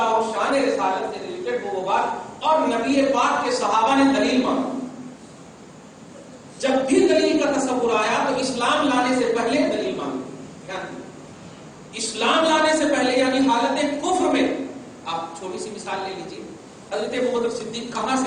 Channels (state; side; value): identical; both; correlation 1.00